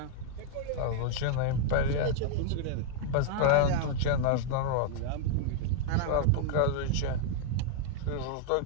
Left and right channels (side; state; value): both; different; correlation 0.00